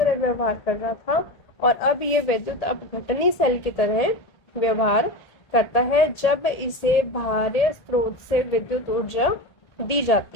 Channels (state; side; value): late; right; 1.8 ms